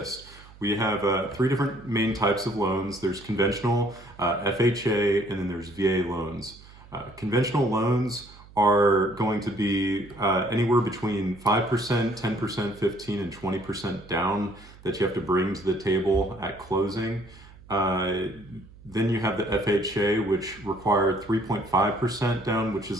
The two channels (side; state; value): right; noise; hum, 22 dB below the sound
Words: We have 3 different main types of loans. There's conventional, FHA, and then there's VA loans. Conventional loans are going to be anywhere between 5%, 10%, 15, and 20% down that you have to bring to the table at closing. Then you have the FHA, which require 3.5% down, which